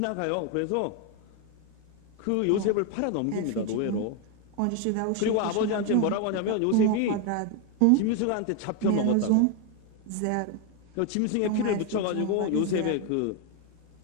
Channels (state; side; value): different; both; correlation 0.01